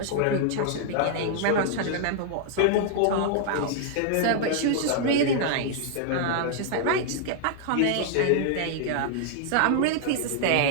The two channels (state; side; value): different; both; correlation -0.01